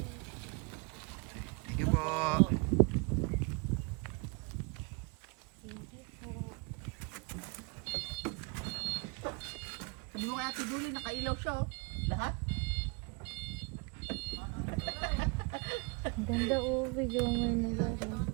Thank you po. Thank you po. Sabi mo kaya Tiduli, nakailaw siya oh. Lahat? Ang ganda oh, video mo yung naglaro.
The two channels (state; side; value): quieter; left; 31.0 dB